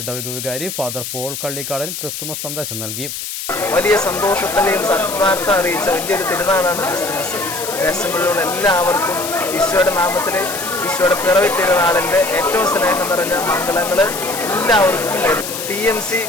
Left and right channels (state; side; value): noise; left; hiss, 7 dB below the sound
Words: ഇടവക വികാരി ഫാദർ പോൾ കള്ളിക്കാടൻ ക്രിസ്തുമസ് സന്ദേശം നൽകി. വലിയ സന്തോഷത്തിൻ്റെയും സത്വാർത്ഥ അറിയിച്ച വലിയൊരു തിരുനാളാണ് ക്രിസ്തുമസ്. ദേശങ്ങളിലുള്ള എല്ലാവർക്കും ഈശോയുടെ നാമത്തിൽ ഈശോയുടെ പിറവി തിരുനാളിൻ്റെ ഏറ്റവും സ്നേഹം നിറഞ്ഞ മംഗളങ്ങൾ എല്ലാവർക്കും TMC